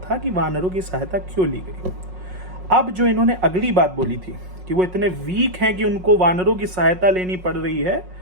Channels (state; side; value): late; left; 5.5 ms